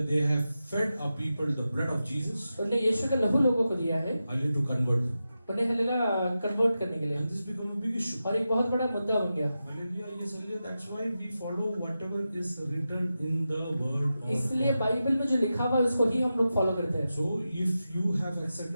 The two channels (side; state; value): both; inverted; correlation -0.91